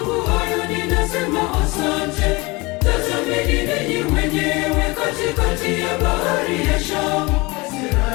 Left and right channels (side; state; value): right; quieter; 24.5 dB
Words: hayo ninasema asante. Tazameni ninyi wenyewe katikati ya bahari ya Shamu.